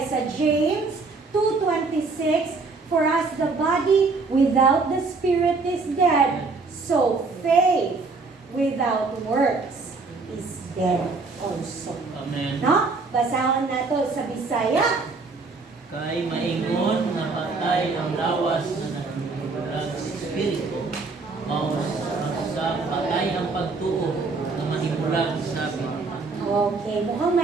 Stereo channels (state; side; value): quieter; left; 4.0 dB